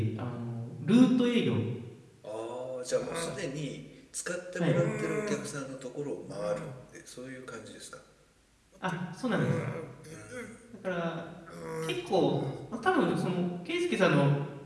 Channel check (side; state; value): both; identical; correlation 1.00